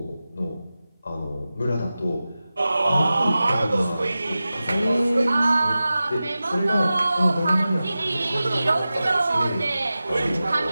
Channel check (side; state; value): both; inverted; correlation -0.95